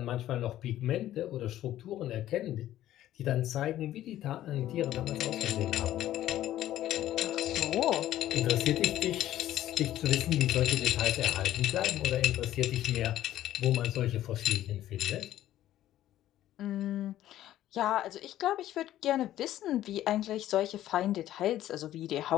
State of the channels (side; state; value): right; quieter; 13.2 dB